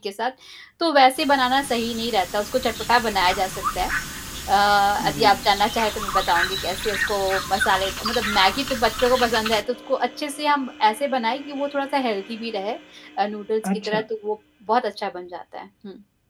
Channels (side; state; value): both; identical; correlation 1.00